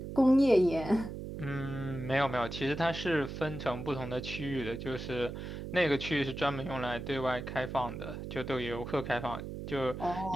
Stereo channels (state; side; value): noise; right; hum, 7 dB below the sound